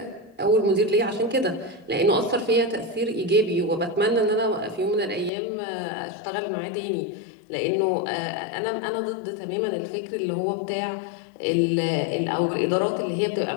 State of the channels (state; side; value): drops out; right; at 5.3 s